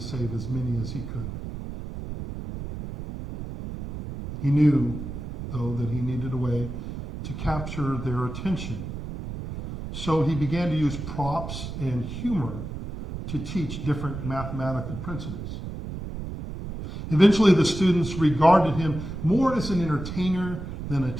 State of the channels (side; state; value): right; noise; rumble, 8 dB below the sound